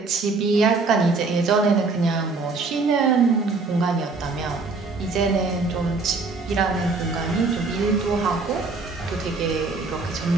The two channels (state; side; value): quieter; left; 4.0 dB